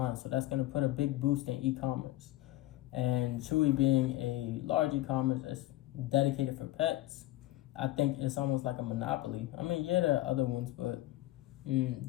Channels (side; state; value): right; quieter; 16.5 dB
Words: So that's going to put a big boost in e-commerce. And Chewy being a large e-commerce that's dedicated for pets, I think it's almost like a monopoly. I mean, yeah, there are other ones, but